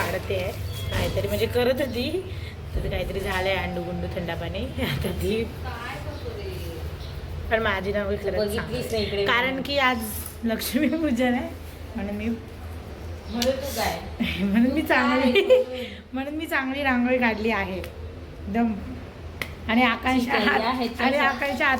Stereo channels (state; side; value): identical; both; correlation 1.00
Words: आहे काहीतरी, म्हणजे करत होती तर काहीतरी झालं आहे अंडू गुंडू थंडा पाणी. आता ती पण माझी रांगोळी खरंच, कारण की आज लक्ष्मीपूजन आहे म्हणून मी चांगली रांगोळी काढली आहे एकदम. आणि आकांक्षा